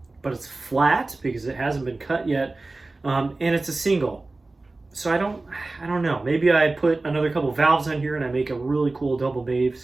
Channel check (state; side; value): quieter; left; 3.2 dB